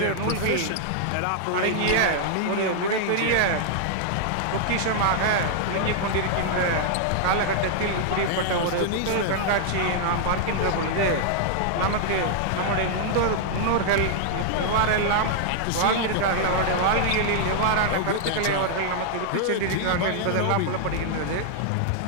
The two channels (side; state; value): both; different; correlation -0.01